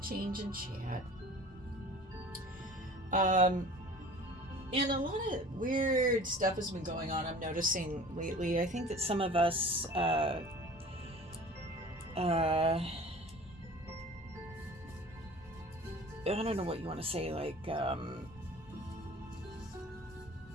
change in chat. And a lot of weird stuff has been going on, I'm noticing lately. I think that some of us, I don't know what you want to say, like,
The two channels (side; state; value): both; normal; correlation 0.43